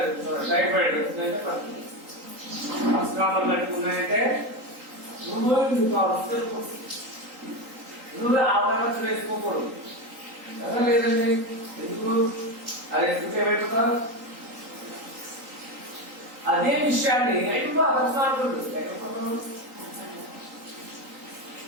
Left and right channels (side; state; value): left; late; 3.8 ms